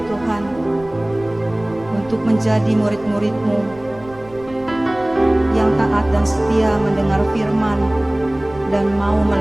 Tuhan untuk menjadi murid-murid-Mu yang taat dan setia mendengar firman dan mau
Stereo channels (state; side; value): noise; right; rumble, 21 dB below the sound